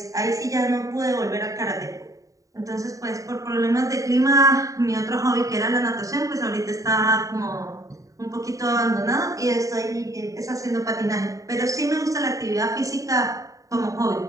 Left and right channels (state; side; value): late; left; 0.16 ms